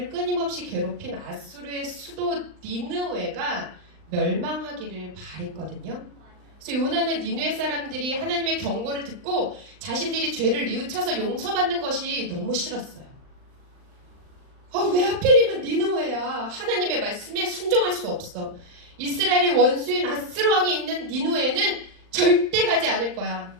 끊임없이 괴롭힌 아수르의 수도 니느웨가 멸망하기를 바랬거든요. 그래서 요나는 니느웨 사람들이 하나님의 경고를 듣고 자신들이 죄를 뉘우쳐서 용서받는 것이 너무 싫었어요. 왜 하필이면 니느웨야? 하나님의 말씀에 순종할 수 없어. 이스라엘의 원수인 아수르 왕이 있는 니느웨는 절대 가지 않을 거야.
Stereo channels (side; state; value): left; late; 39 ms